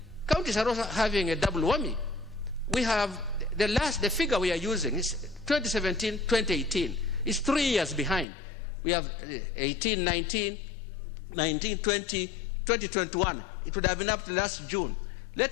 counties are also having a double whammy. We have the figure we are using is 2017, 2018. It's 3 years behind. We have 18, 19, 19, 20, 2021. It would have been up to last June.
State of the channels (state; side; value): drops out; right; at 8.2 s